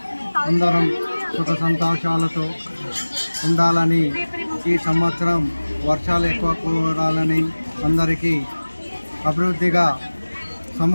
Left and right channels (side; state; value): both; inverted; correlation -1.00